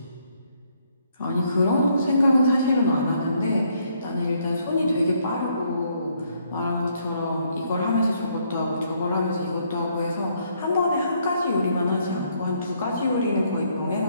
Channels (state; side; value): inverted; both; correlation -0.71